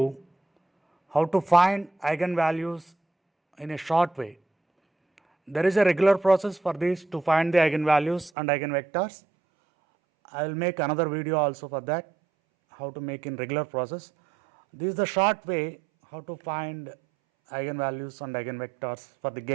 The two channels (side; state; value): left; drops out; at 8.3 s